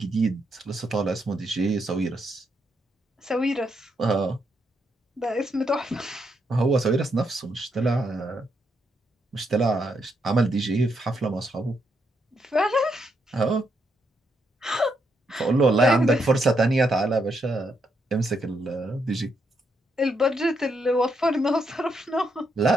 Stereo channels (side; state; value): both; normal; correlation 0.78